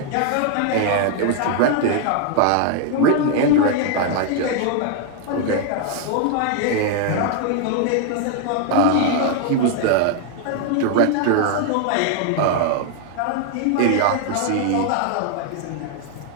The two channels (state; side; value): different; both; correlation 0.00